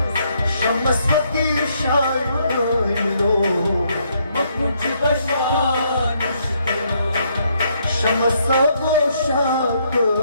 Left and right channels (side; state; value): both; inverted; correlation -0.72